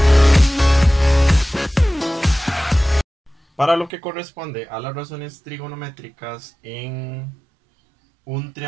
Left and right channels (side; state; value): left; drops out; at 3.9 s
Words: Para lo que corresponde a las razones trigonométricas en un